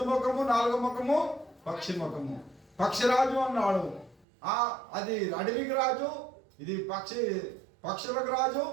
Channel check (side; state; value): left; drops out; at 4.2 s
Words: ముఖము, నాలుగో ముఖము పక్షి ముఖము. పక్షిరాజు అన్నాడు. అది అడవికి రాజు, ఇది పక్షులకు రాజు,